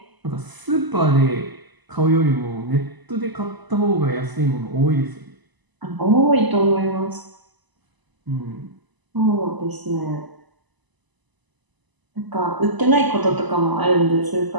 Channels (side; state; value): left; late; 1.0 ms